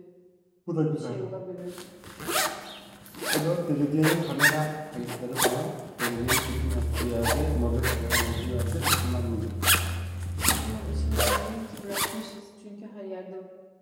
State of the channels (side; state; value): both; identical; correlation 1.00